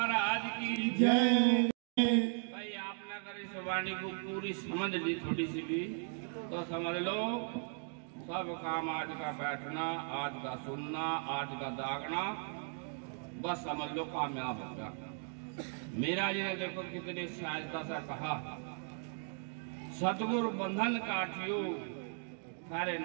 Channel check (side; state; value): left; silent; 53 dB below the other